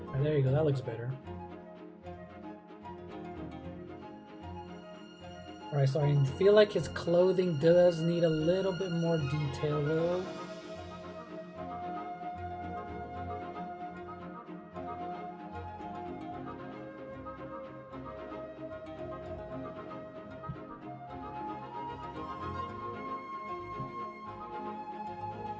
There you go, that looks better. Alright, so I feel like his clothing does need a little bit more detail though.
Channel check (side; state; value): both; identical; correlation 1.00